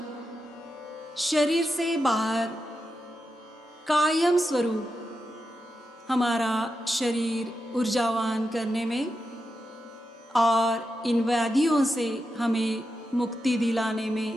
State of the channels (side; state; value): both; normal; correlation 0.88